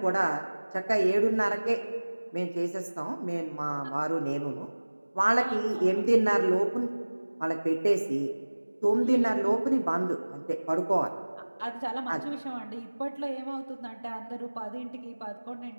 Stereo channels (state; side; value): inverted; both; correlation -1.00